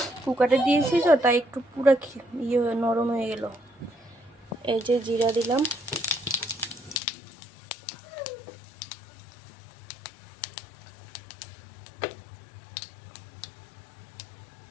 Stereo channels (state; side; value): drops out; right; at 7.0 s